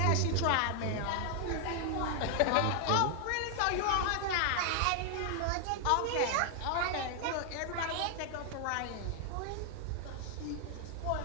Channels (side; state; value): both; different; correlation 0.00